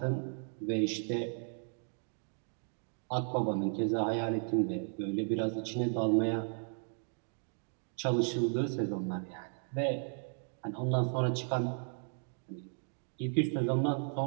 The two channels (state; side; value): silent; left; 54 dB below the other